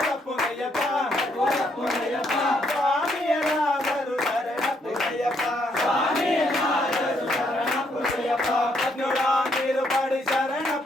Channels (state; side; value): normal; both; correlation 0.73